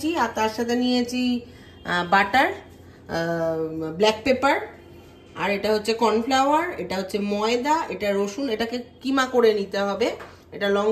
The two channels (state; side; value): identical; both; correlation 1.00